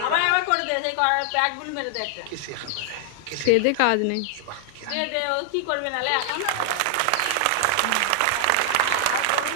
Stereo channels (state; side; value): different; both; correlation 0.00